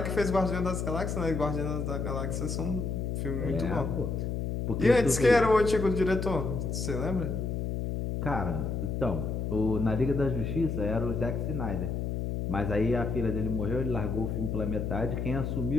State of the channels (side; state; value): left; noise; hum, 2 dB below the sound